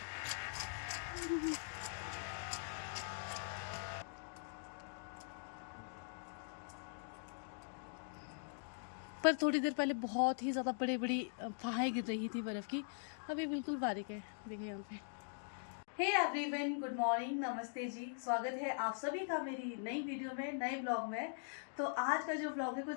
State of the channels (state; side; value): silent; right; digital silence